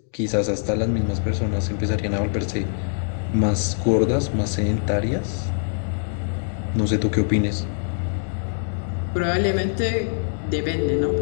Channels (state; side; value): silent; right; digital silence